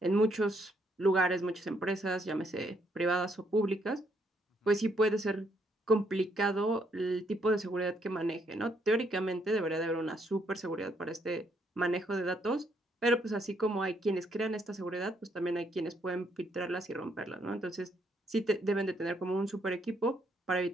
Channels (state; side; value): normal; both; correlation 0.72